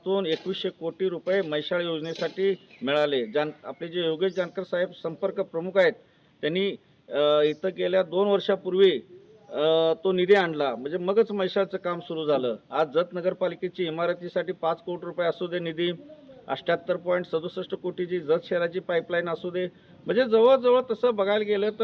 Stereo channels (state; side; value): identical; both; correlation 1.00